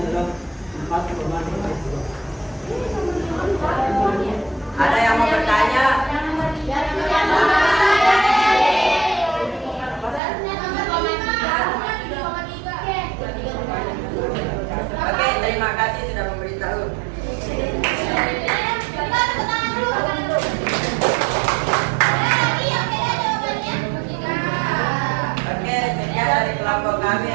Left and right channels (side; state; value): left; drops out; at 10.2 s